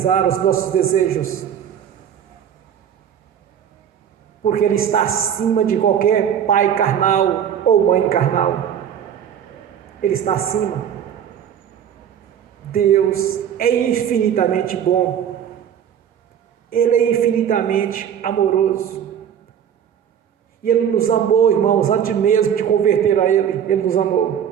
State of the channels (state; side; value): quieter; left; 9.0 dB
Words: os nossos desejos, porque Ele está acima de qualquer pai carnal ou mãe carnal. Ele está acima. Deus é infinitamente bom. Ele é infinitamente amoroso. E Ele nos amou, irmãos, antes mesmo de converter a Ele. Ele nos